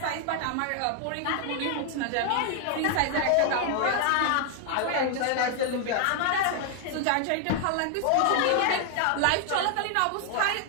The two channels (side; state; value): both; different; correlation 0.00